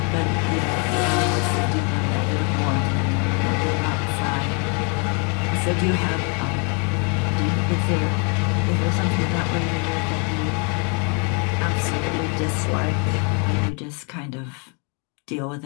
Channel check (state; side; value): quieter; right; 35.8 dB